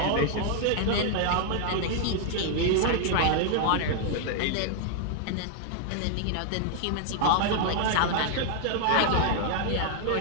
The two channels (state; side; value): different; both; correlation 0.00